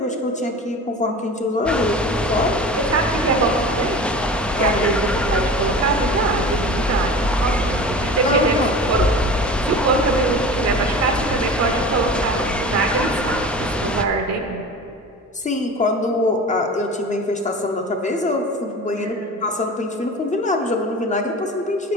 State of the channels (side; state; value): both; normal; correlation 0.35